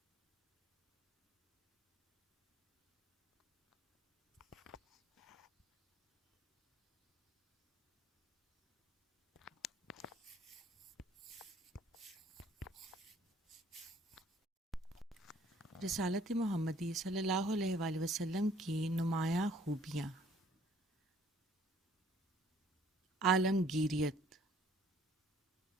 رسالت محمدی صلی اللہ علیہ وآلہ وسلم کی نمایاں خوبیاں۔ عالمگیریت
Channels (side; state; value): both; normal; correlation 0.58